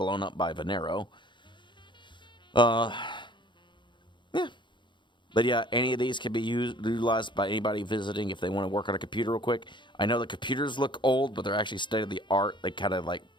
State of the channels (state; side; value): late; right; 0.23 ms